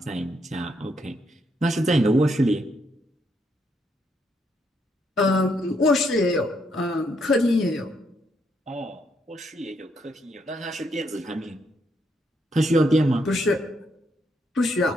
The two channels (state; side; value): normal; both; correlation 0.75